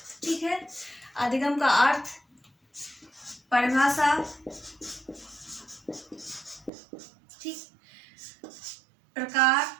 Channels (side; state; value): left; drops out; at 6.7 s